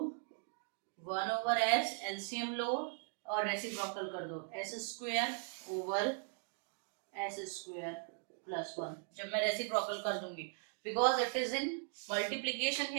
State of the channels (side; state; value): left; silent; 52 dB below the other